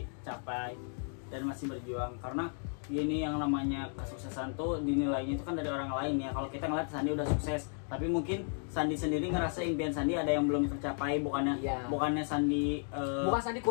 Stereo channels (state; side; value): silent; right; 55 dB below the other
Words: capai dan masih berjuang, karena ini yang namanya kesuksesan tuh dinilainya itu kan dari orang lain ya. Kalau kita ngeliat Sandi udah sukses, tapi mungkin Sandi sendiri ngerasa impian Sandi ada yang belum tercapai, bukannya Sandi bukan Sandi